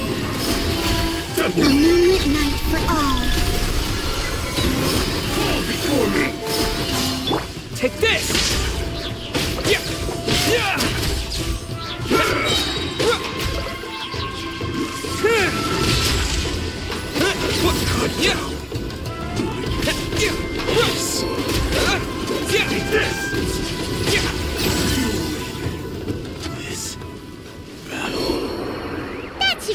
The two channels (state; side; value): identical; both; correlation 1.00